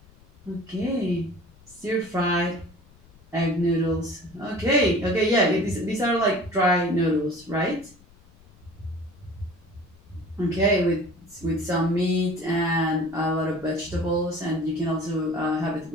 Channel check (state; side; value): noise; left; rumble, 26 dB below the sound